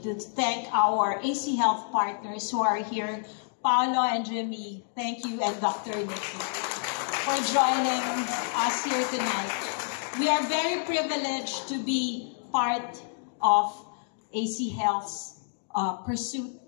to thank our AC Health partners who are here, Paolo and Jimmy, thank you, and Dr. Nikki, for joining us here tonight. We are very privileged to be part of AC Health's pursuit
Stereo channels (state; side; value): silent; right; 59 dB below the other